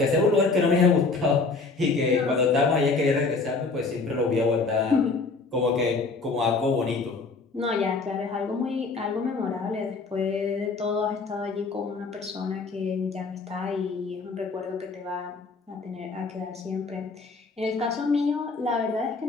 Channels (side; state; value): right; quieter; 4.1 dB